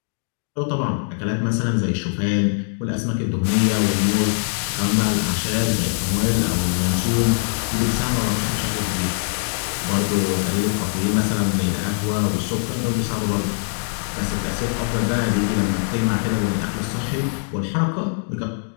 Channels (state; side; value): silent; right; digital silence